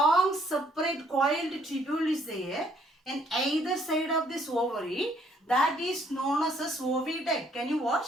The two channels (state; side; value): normal; both; correlation 0.65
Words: separate coiled tubule is there in either side of this ovary. That is known as a oviduct. Can you